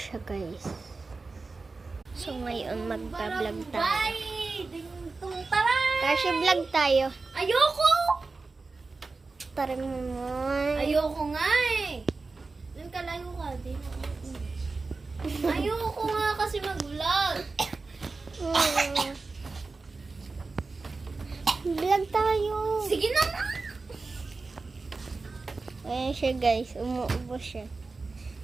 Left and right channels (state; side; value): quieter; left; 3.9 dB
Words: guys. So, ngayon magbablog tayo. Kashi, vlog tayo. Ayoko! Tara mo naman. Ayoko nga eh. Doon ka layo ka. Ayoko nga kasi mag-vlog. Vlog tayo. Sige na nga. Ayan siya, guys. Umuubo siya.